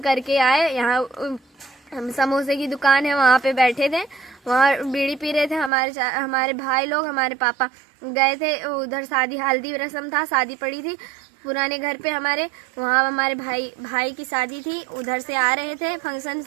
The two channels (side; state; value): left; drops out; at 5.7 s